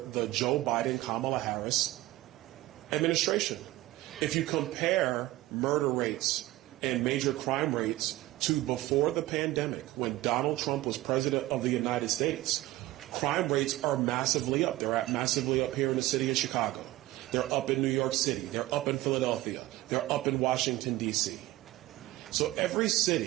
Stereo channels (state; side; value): quieter; left; 17.2 dB